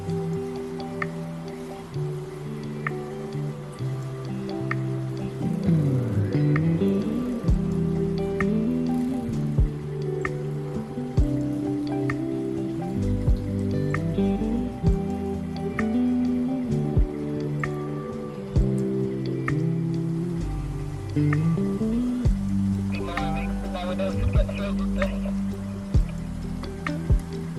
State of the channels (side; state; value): both; identical; correlation 1.00